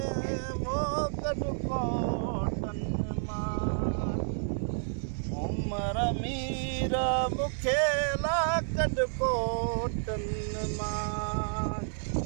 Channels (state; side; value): silent; left; 57 dB below the other